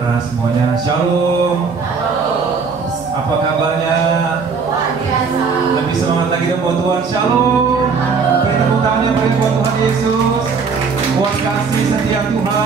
semuanya. Shalom. Apa kabarnya? Lebih semangat lagi dong buat Tuhan. Shalom. Beri tepuk tangannya bagi buat Tuhan Yesus. Buat kasih setia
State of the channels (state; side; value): quieter; left; 5.3 dB